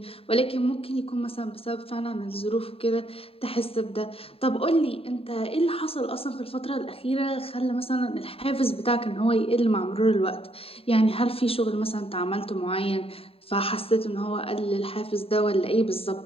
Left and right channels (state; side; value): late; right; 0.27 ms